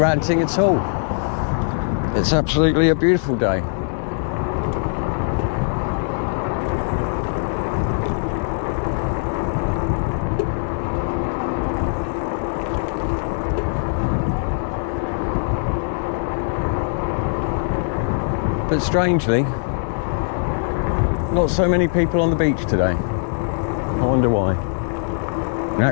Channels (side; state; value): right; silent; digital silence